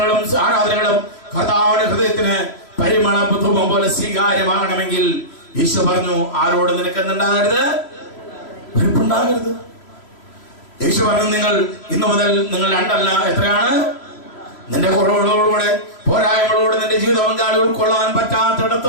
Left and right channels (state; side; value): late; right; 3.0 ms